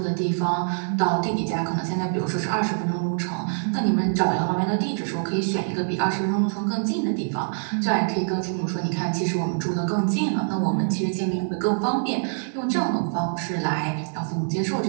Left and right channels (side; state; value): left; silent; 62 dB below the other